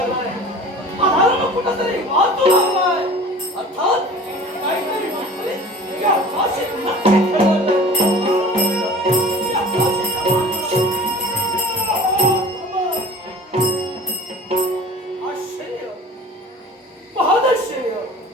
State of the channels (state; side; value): normal; both; correlation 0.42